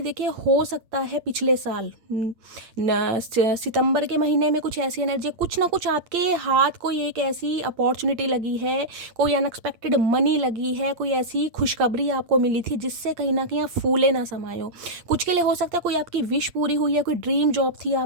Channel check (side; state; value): left; late; 8.6 ms